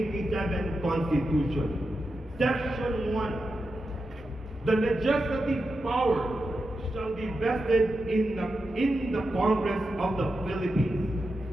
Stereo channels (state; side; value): normal; both; correlation 0.89